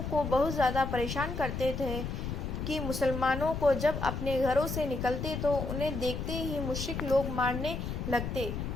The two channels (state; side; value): noise; left; rumble, 4 dB below the sound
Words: کو بہت زیادہ پریشان کرتے تھے کہ مسلمانوں کو جب اپنے گھروں سے نکلتے تو انہیں دیکھتے ہی مشرک لوگ مارنے لگتے